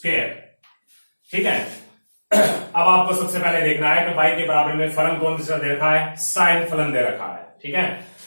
ठीक है, अब आपको सबसे पहले देखना है कि y के बराबर में फलन कौन सा दे रखा है, साइन फलन दे रखा है। ठीक है,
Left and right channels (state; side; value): inverted; both; correlation -1.00